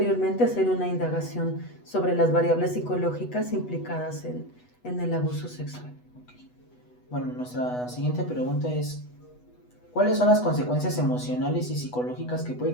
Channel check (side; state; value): right; late; 8.1 ms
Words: hacer una indagación sobre las variables psicológicas implicadas en el abuso sexual. Bueno, nuestra siguiente pregunta es: ¿cuáles son las consecuencias emocionales y psicológicas que puede